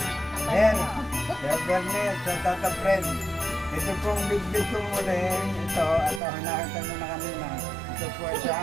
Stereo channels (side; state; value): left; drops out; at 6.2 s